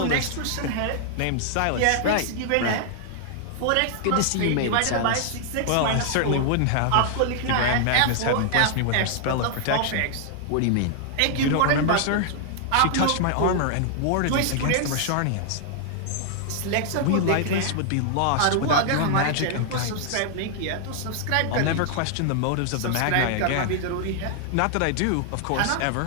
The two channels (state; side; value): different; both; correlation 0.00